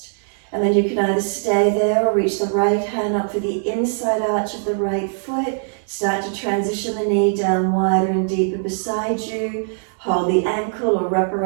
And then you can either stay there or reach the right hand up for the inside arch of the right foot. Start to transition the knee down wider and deeper beside you. Hold the ankle or wrap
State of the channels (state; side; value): silent; left; digital silence